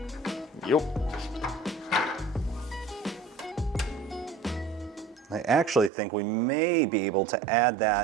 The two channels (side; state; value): left; drops out; at 5.9 s